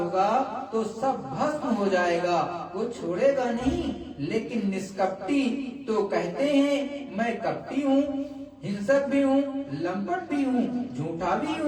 तो सब भस्म हो जाएगा, वो छोड़ेगा नहीं। लेकिन निष्कपटी तो कहते हैं मैं कपटी हूँ, हिंसक भी हूँ, लंपट भी हूँ, झूठा भी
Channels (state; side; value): identical; both; correlation 1.00